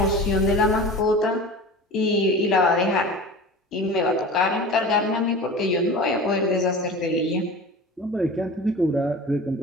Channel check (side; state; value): both; normal; correlation 0.35